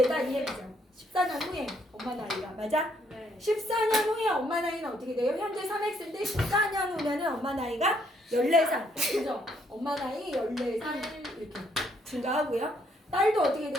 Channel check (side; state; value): both; normal; correlation 0.70